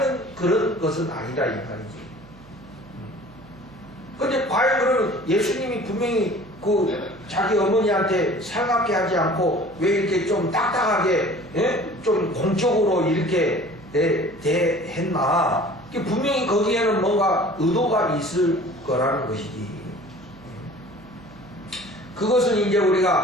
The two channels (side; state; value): right; noise; hum, 23 dB below the sound